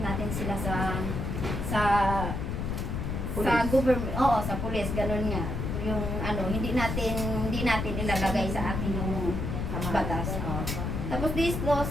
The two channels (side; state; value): left; noise; rumble, 2 dB below the sound